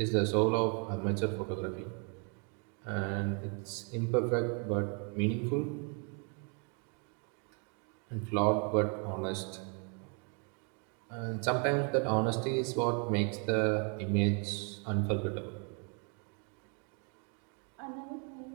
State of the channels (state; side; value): quieter; left; 38.0 dB